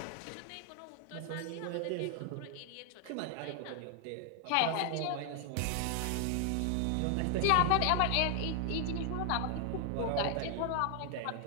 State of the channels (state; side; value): different; both; correlation 0.00